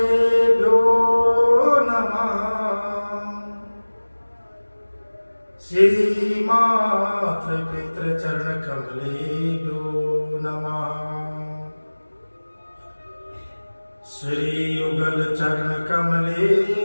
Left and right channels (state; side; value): inverted; both; correlation -1.00